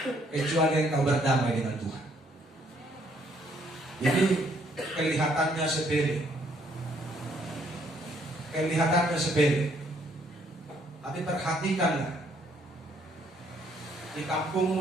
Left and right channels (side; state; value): both; normal; correlation 0.67